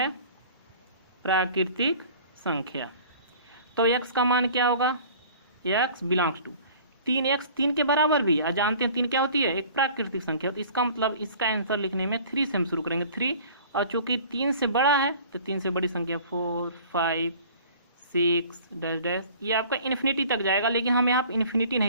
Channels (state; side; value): inverted; both; correlation -0.47